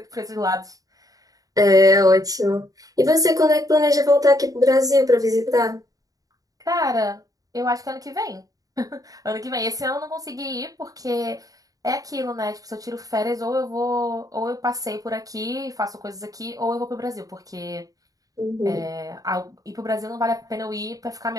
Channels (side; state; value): left; late; 0.17 ms